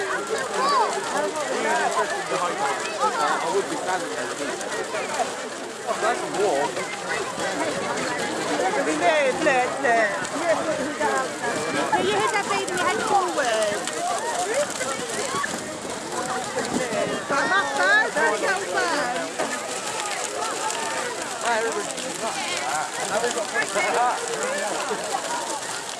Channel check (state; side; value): identical; both; correlation 1.00